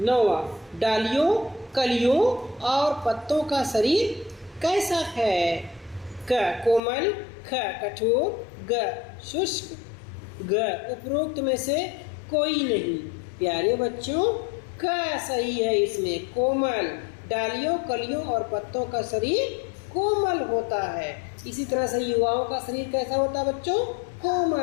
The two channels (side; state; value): right; drops out; at 6.8 s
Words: नौवां, डालियों, कलियों और पत्तों का शरीर कैसा है? क कोमल, ख कठोर, ग शुष्क, ग उपरोक्त में से कोई नहीं। प्यारे बच्चों क सही है इसमें, कोमल। डालियों, कलियों और पत्तों का शरीर कोमल होता है। इसी तरह से युवाओं का शरीर कैसा होता है बच्चों?